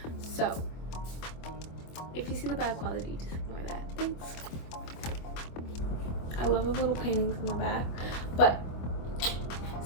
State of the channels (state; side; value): late; right; 25 ms